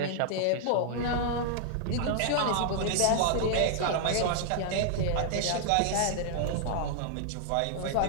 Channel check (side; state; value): both; different; correlation 0.00